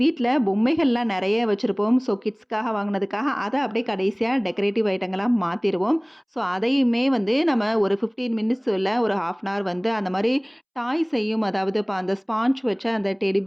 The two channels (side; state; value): both; identical; correlation 1.00